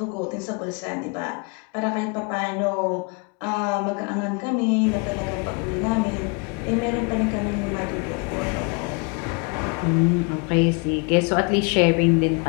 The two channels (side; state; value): right; quieter; 32.7 dB